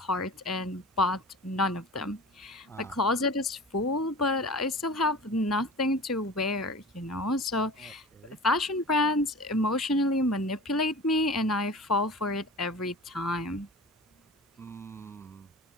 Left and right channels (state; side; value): normal; both; correlation 0.37